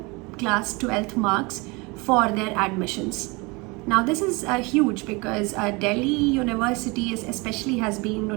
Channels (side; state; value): left; quieter; 26.6 dB